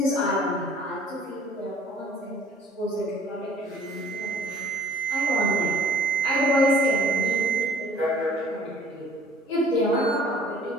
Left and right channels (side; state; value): both; normal; correlation 0.52